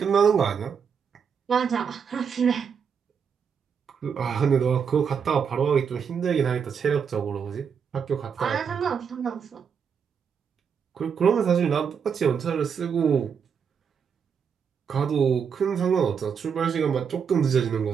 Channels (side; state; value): left; quieter; 6.8 dB